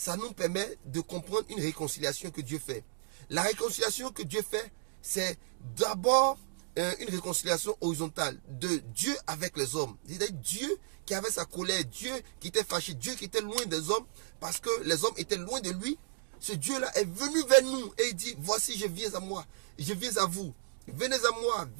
nous permet de comprendre une réconciliation que Dieu fait. La réconciliation que Dieu fait, c'est d'abord une réconciliation horizontale de Dieu avec les hommes. C'est-à-dire Dieu qui avait sa colère, Dieu qui était fâché, Dieu qui était loin des hommes parce que les hommes étaient loin de lui. Ce Dieu-là est venu vers nous et il dit, voici je viens à moi, je viens à vous. Venez à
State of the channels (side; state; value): left; silent; digital silence